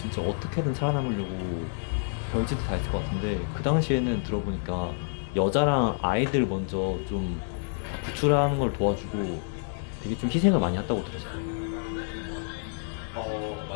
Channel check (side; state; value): right; silent; digital silence